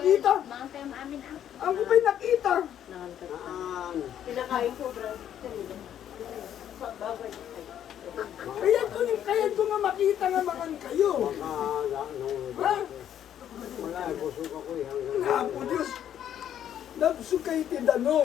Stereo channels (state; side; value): quieter; right; 10.2 dB